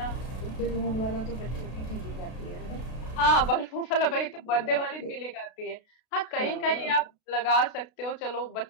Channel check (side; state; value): right; late; 32 ms